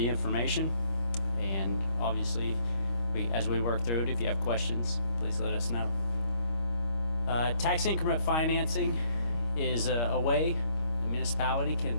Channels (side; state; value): right; late; 25 ms